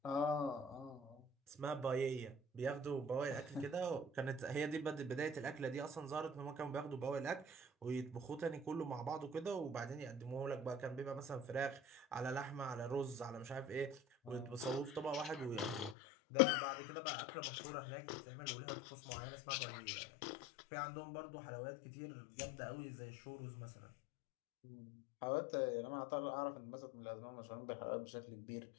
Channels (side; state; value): right; drops out; at 16.0 s